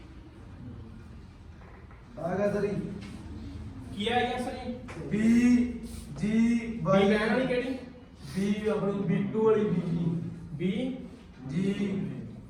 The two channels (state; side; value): identical; both; correlation 1.00